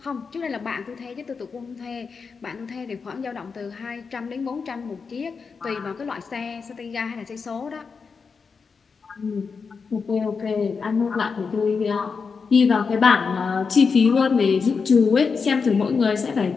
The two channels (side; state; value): right; quieter; 5.3 dB